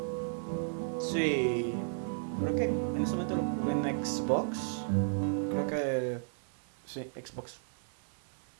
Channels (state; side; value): silent; left; 55 dB below the other